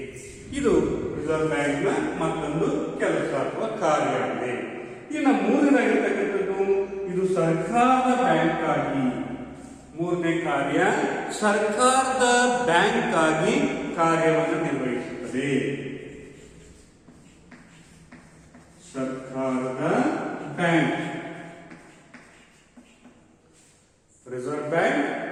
ಇದು ರಿಸರ್ವ್ ಬ್ಯಾಂಕ್ನ ಮತ್ತೊಂದು ಕೆಲಸ ಅಥವಾ ಕಾರ್ಯ ಆಗಿದೆ. ಇನ್ನು ಮೂರನೇದಾಗಿರ್ತಕ್ಕಂಥದ್ದು ಇದು ಸರ್ಕಾರದ ಬ್ಯಾಂಕ್ ಆಗಿ, ಮೂರನೇ ಕಾರ್ಯ ಸರ್ಕಾರದ ಬ್ಯಾಂಕ್ ಆಗಿ ಕಾರ್ಯವನ್ನು ನಿರ್ವಹಿಸುತ್ತದೆ. ಸರ್ಕಾರದ ಬ್ಯಾಂಕ್, ರಿಸರ್ವ್ ಬ್ಯಾಂಕ್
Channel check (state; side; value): identical; both; correlation 1.00